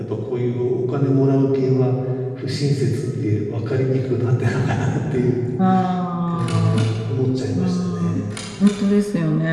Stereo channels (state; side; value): identical; both; correlation 1.00